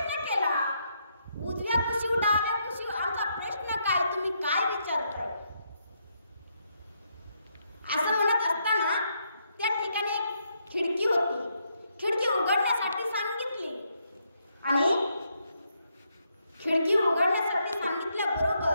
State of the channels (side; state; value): both; inverted; correlation -0.77